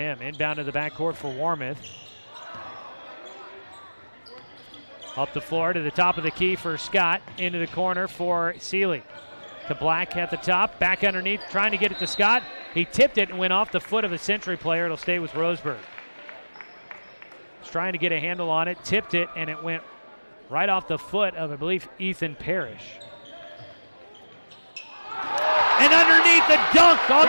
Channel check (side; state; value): both; inverted; correlation -1.00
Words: Inbound to the backcourt for Warmouth. Up the floor to the top of the key for Scott. Into the corner for Seeley. To Black at the top. Back underneath, trying to get it to Scott. He tipped it and went off the foot of a Century player. It'll stay with Roseburg. He's trying to get a handle on it. Tipped it, and it went right off the foot of, I believe, Ethan Parrish. And underneath the dunk on